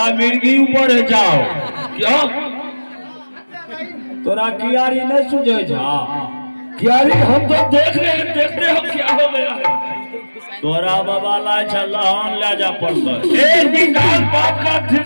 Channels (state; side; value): inverted; both; correlation -1.00